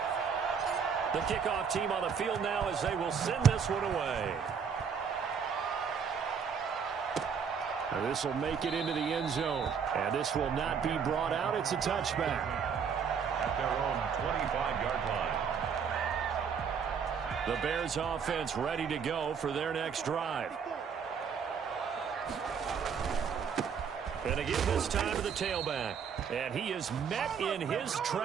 The kickoff team on the field now as they will send this one away. And this will make it into the end zone. And this will not be brought out. It's a touchback. At their own 25-yard line. The Bears offense ready to go for their next drive. And to give this time to the tailback. And he is met in his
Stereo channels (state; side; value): quieter; left; 6.7 dB